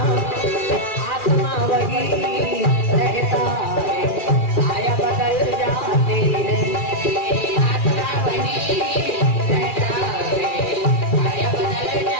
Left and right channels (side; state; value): right; late; 2.4 ms